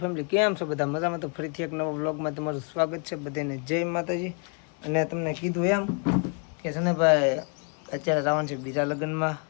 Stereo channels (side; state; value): right; quieter; 37.2 dB